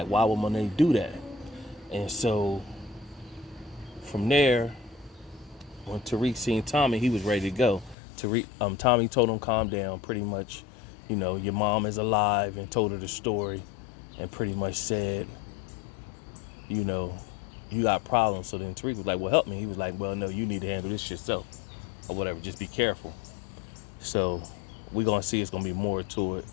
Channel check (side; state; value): right; drops out; at 8.0 s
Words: why would Monet do that? And so from there, when Tariq seen Tommy, he was ready to go. Tommy told him, calm down, pretty much, you know, your mom is alive, and told her the story, and pretty much said, you know, you got problems. So then Tariq was like, well, help me. He was like, well, no, you need to handle this yourself, or whatever, just be careful. So we're going to see it's going to be more to it